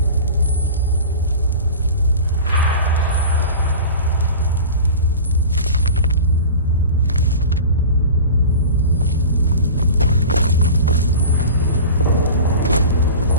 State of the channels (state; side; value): inverted; both; correlation -0.34